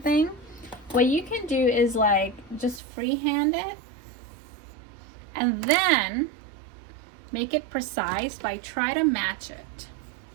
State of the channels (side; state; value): left; drops out; at 2.8 s